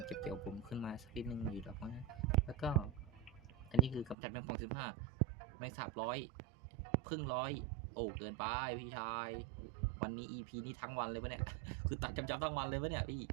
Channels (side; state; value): left; drops out; at 4.2 s